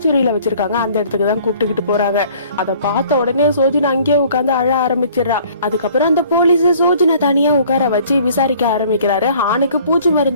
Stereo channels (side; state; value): both; inverted; correlation -0.54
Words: வச்சிருக்காங்க. அந்த இடத்துக்கு தான் கூப்பிட்டுக்கிட்டு போறாங்க. அதை பார்த்த உடனே சோஜனை அங்கேயே உட்காந்து அழ ஆரம்பிச்சிடறா. அதுக்கப்புறம் அந்த போலீஸ் சோஜனை தனியா உட்கார வச்சு விசாரிக்க ஆரம்பிக்கிறாரு. ஹானுக்கு பூச்சி